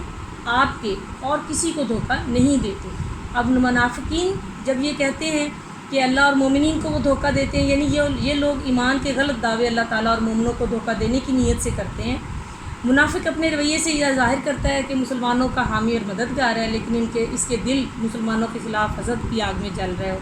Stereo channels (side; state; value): both; identical; correlation 1.00